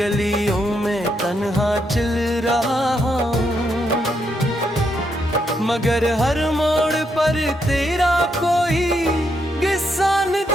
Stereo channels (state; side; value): normal; both; correlation 0.79